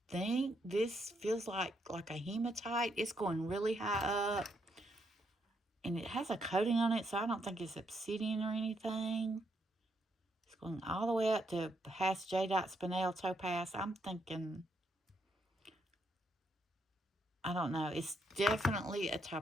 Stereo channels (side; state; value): both; normal; correlation 0.76